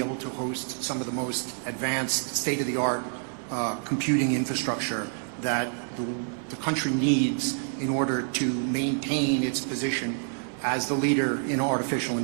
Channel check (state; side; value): silent; left; digital silence